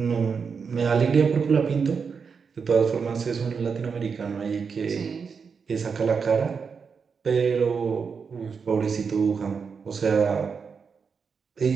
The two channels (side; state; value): left; quieter; 5.8 dB